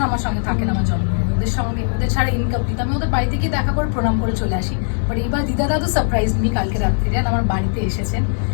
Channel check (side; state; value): right; silent; digital silence